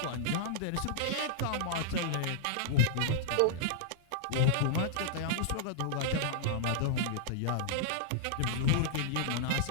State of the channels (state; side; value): different; both; correlation -0.02